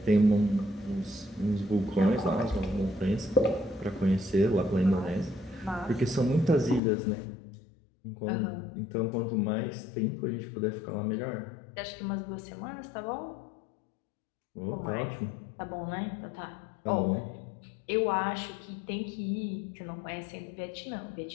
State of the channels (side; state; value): right; drops out; at 6.8 s